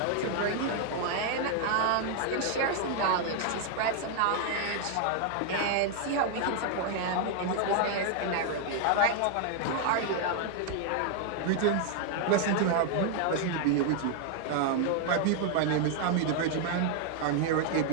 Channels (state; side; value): different; both; correlation 0.00